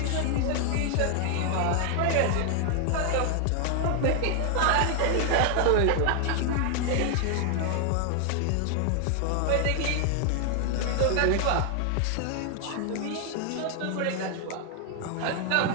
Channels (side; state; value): both; different; correlation 0.00